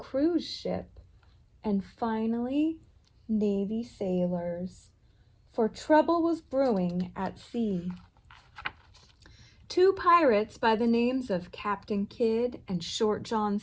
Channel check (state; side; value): identical; both; correlation 1.00